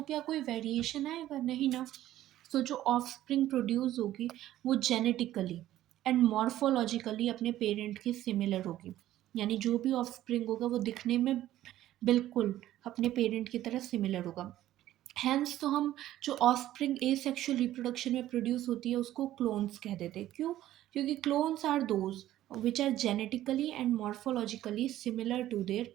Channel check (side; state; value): left; quieter; 13.7 dB